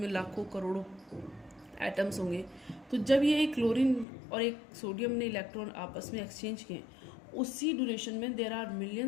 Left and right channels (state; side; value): drops out; right; at 4.0 s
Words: लाखों करोड़ों एटम्स होंगे। तो जब ये एक क्लोरीन और एक सोडियम ने इलेक्ट्रॉन आपस में एक्सचेंज किए, उसी ड्यूरेशन में there are